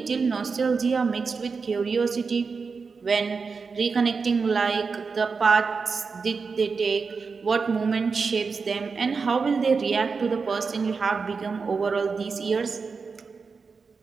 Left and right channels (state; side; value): quieter; left; 4.9 dB